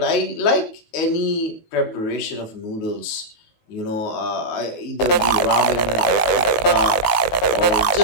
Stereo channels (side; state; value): right; late; 18 ms